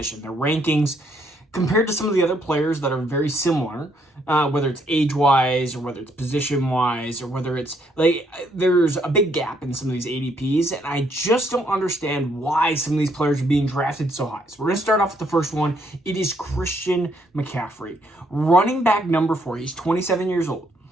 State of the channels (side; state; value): both; normal; correlation 0.71